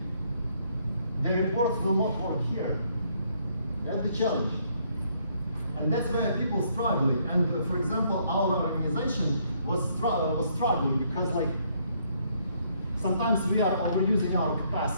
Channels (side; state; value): both; inverted; correlation -0.69